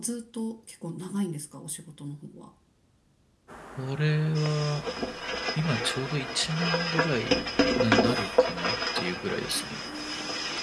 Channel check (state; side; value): identical; both; correlation 1.00